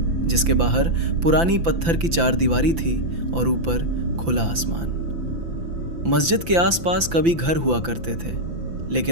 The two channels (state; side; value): late; left; 5.9 ms